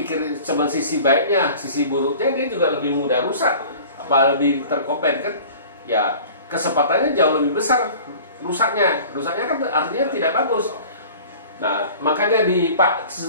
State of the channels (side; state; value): both; inverted; correlation -0.43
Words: cuma sisi baiknya, sisi buruknya dia juga lebih mudah rusak, apa lebih terkopen kan? Ya kesempatannya jauh lebih besar rusaknya kan artinya tidak bagus. Nah makanya di Pak